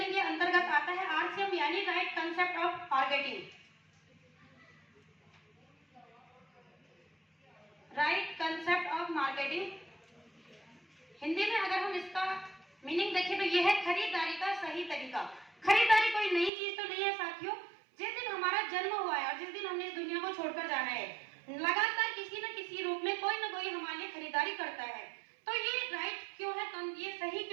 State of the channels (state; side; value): drops out; left; at 16.5 s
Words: के अंतर्गत आता है आरसीएम, यानी right concept of marketing. Right concept of marketing Hindi में अगर हम इसका मीनिंग देखें तो यह है खरीदारी का सही तरीका। खरीदारी कोई नई चीज तो नहीं है साथियों। जिस दिन हमारा जन्म हुआ है और जिस दिन हमने इस दुनिया को छोड़कर जाना है, लगातार किसी न किसी रूप में कोई न कोई हमारे लिए खरीदारी करता है। तो ये राइट क्यों है, ये सही